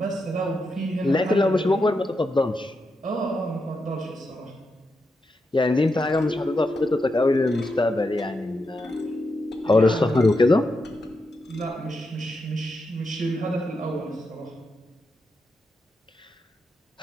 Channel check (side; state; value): both; normal; correlation 0.85